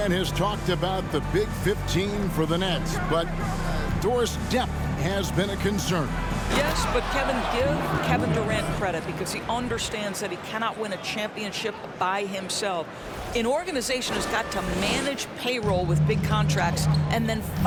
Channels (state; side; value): identical; both; correlation 1.00